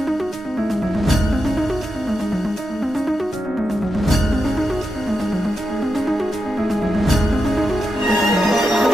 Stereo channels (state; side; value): normal; both; correlation 0.87